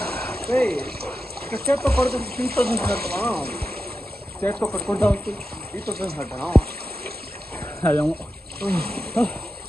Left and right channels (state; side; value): normal; both; correlation 0.90